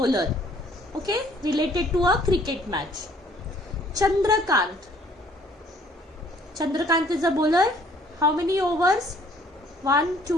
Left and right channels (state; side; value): normal; both; correlation 0.59